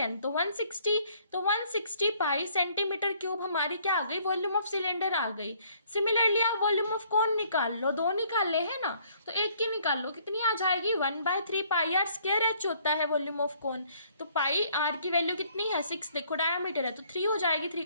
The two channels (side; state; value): both; inverted; correlation -0.63